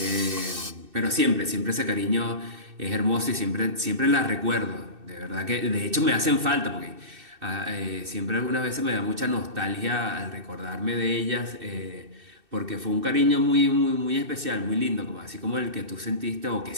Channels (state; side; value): late; left; 2.6 ms